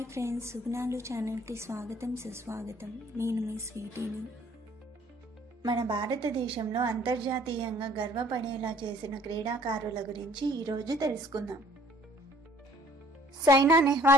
friends, సుగుణాలు ఛానల్కి స్వాగతం సుస్వాగతం. నేను మీ స్వీటీని. మన భారతదేశంలో అంతర్జాతీయంగా గర్వపడేలా చేసిన క్రీడాకారుల గురించి ఈరోజు తెలుసుకుందాం. సైనా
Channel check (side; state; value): both; normal; correlation 0.57